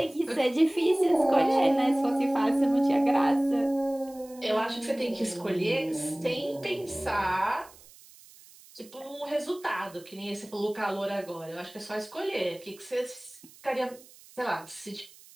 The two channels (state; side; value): noise; right; hiss, 23 dB below the sound